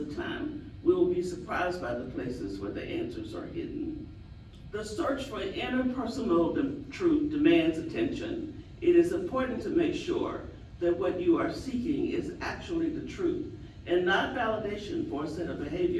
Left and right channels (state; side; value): identical; both; correlation 1.00